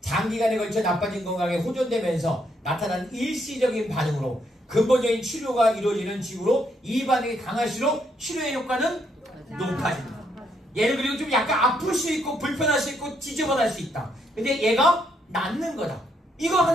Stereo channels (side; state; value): both; normal; correlation 0.74